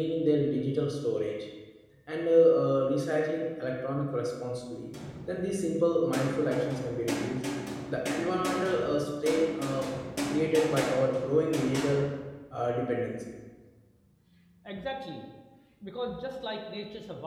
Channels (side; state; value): both; identical; correlation 1.00